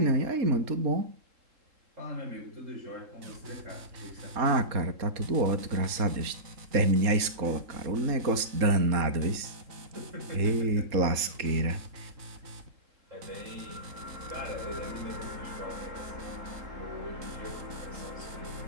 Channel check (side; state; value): left; late; 3.7 ms